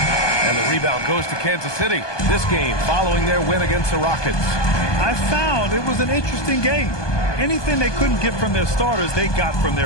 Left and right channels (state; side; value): late; right; 1.2 ms